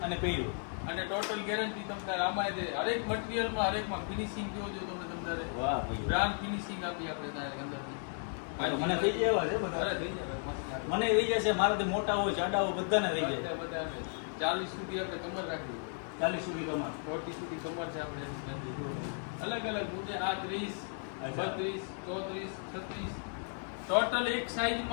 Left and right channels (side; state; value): right; silent; 55 dB below the other